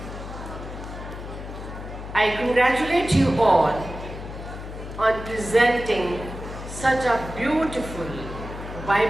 I congratulate you all on presenting such a beautiful,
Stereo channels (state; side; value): noise; left; hum, 10 dB below the sound